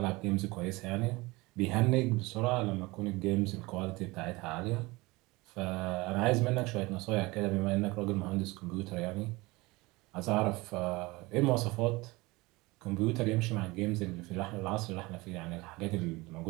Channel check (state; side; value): quieter; left; 22.6 dB